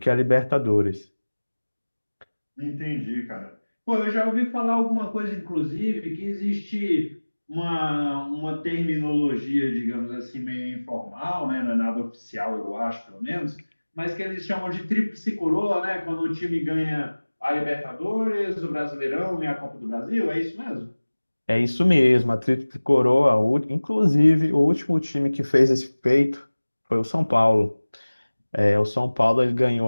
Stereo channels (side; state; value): both; inverted; correlation -1.00